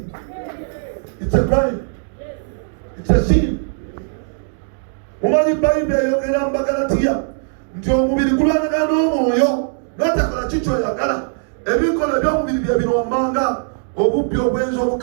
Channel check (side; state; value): left; silent; digital silence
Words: It's a crime. It's a sin. Mumanyi Bayibuli eyogera mu Bagalatiya nti omubiri gulwanagana n'omwoyo, n'atakola kikyoyagala. Ebikola eby'omubiri bye birombanga obubbi, obwenzi,